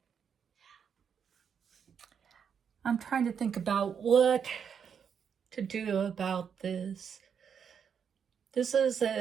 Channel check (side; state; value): left; quieter; 7.3 dB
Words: I'm trying to think about what to do about this. This